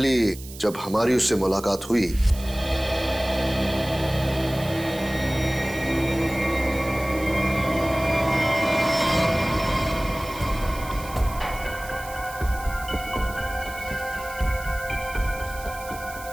जब हमारी उससे मुलाकात हुई,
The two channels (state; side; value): noise; right; hiss, 16 dB below the sound